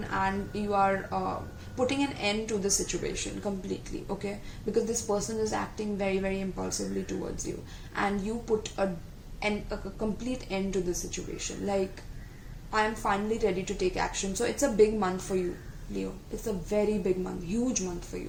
and you are putting an end to the situation completely, okay, because this person is acting very, very impulsively towards you, and you put a complete end to the situation. Like, I am finally ready to take action. So it's a big month for you, Leo. It's a very big month, huge month for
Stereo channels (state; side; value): identical; both; correlation 1.00